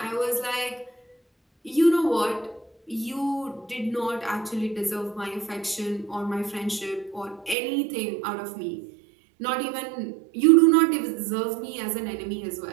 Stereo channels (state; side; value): drops out; left; at 7.6 s